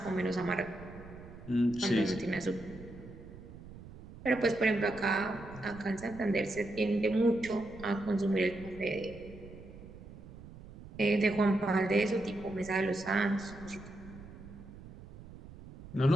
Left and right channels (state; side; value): noise; right; rumble, 16 dB below the sound